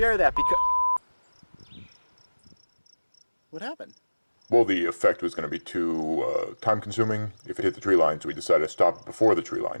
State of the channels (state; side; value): inverted; both; correlation -1.00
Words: that because... What happened? Well, the effect was going to be too time-consuming if it hit the tree line, so we decided to stop it before the tree